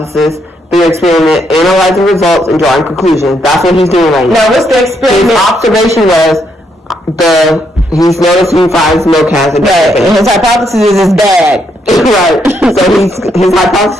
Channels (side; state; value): both; normal; correlation 0.76